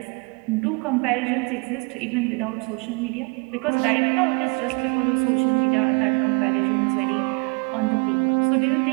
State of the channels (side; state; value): left; quieter; 31.1 dB